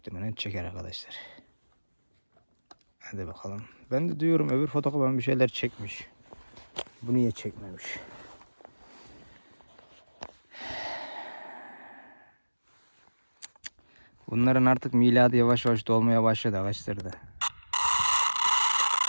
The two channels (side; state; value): both; inverted; correlation -1.00